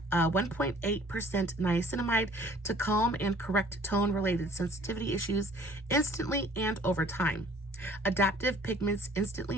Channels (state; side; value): normal; both; correlation 0.54